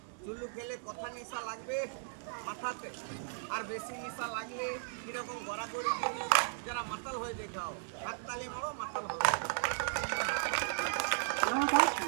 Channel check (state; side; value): silent; left; 54 dB below the other